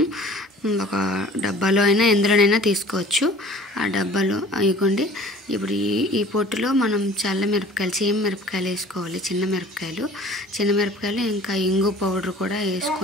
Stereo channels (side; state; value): both; normal; correlation 0.48